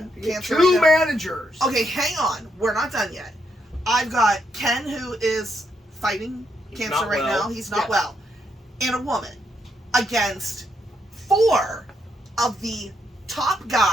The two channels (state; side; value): normal; both; correlation 0.77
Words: cancer. Two managers. Okay, hang on. We're not done yet. I've got Ken who is fighting cancer right now. He's not well. And a woman against 4 of the top